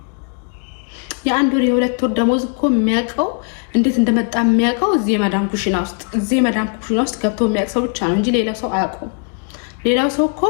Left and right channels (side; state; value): right; quieter; 40.0 dB